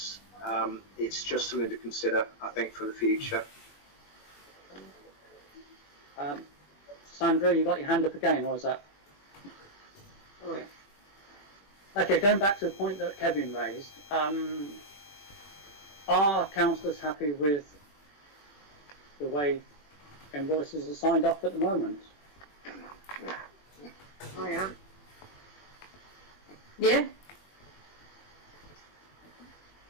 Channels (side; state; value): right; late; 21 ms